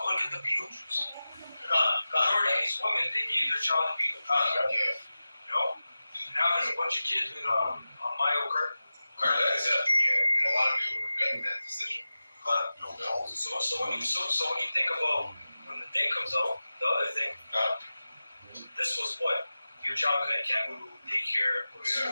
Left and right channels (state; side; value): inverted; both; correlation -0.95